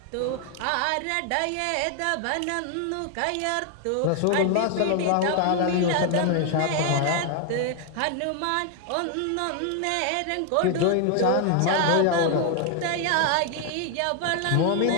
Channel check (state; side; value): different; both; correlation 0.00